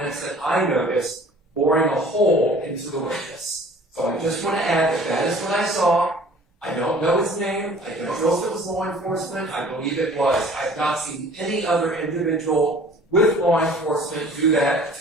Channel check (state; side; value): normal; both; correlation 0.50